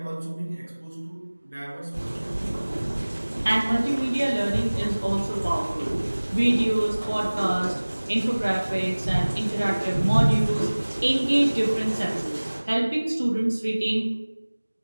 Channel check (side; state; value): both; inverted; correlation -1.00